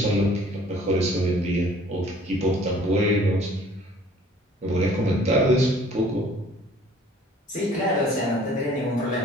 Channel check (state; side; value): normal; both; correlation 0.53